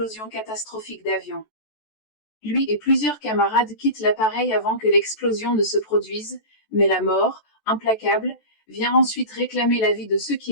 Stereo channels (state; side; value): late; right; 14 ms